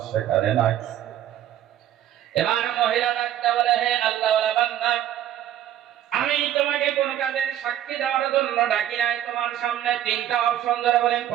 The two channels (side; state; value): left; quieter; 11.7 dB